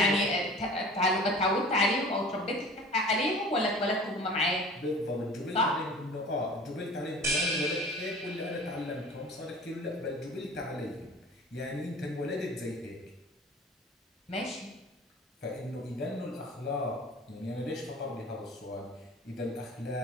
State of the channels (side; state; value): both; normal; correlation 0.43